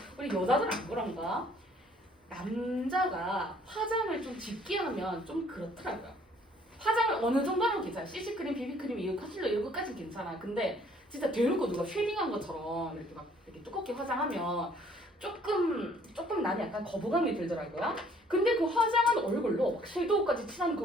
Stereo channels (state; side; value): normal; both; correlation 0.60